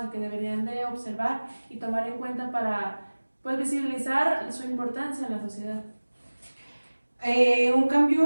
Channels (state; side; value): inverted; both; correlation -1.00